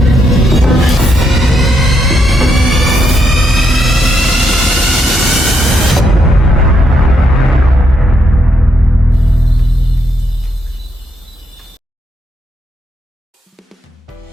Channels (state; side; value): normal; both; correlation 0.78